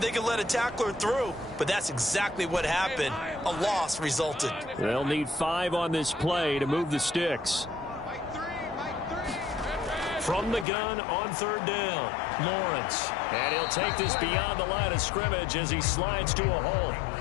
they could let a tackler through, but that's exactly what happened. A loss resulted. They'll need 5 on this play to move the sticks. From the gun on 3rd down, Lawrence. And he'll take this beyond the line of scrimmage as he slides to a halt.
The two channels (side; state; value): right; drops out; at 10.7 s